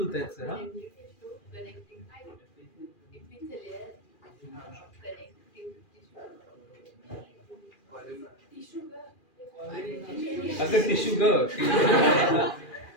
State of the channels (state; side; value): late; right; 2.4 ms